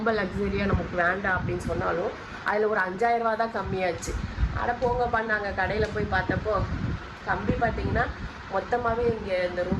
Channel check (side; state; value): both; identical; correlation 1.00